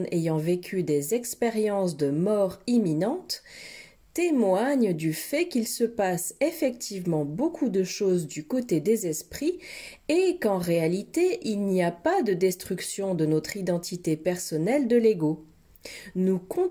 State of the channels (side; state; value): both; identical; correlation 1.00